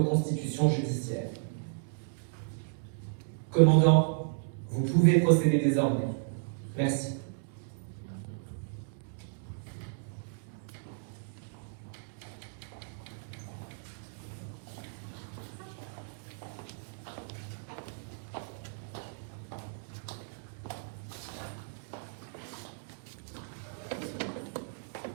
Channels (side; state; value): left; silent; digital silence